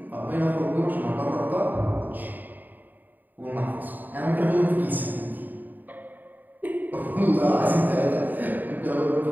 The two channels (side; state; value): left; late; 0.087 ms